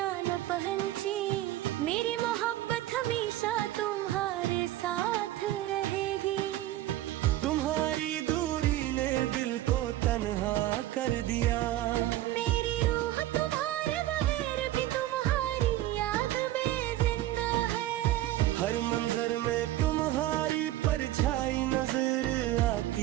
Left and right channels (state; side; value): quieter; left; 14.8 dB